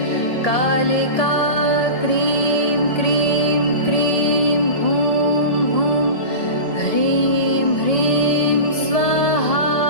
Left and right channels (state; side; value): late; right; 2.1 ms